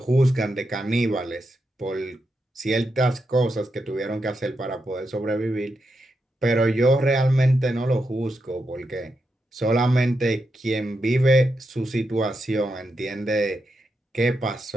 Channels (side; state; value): both; normal; correlation 0.85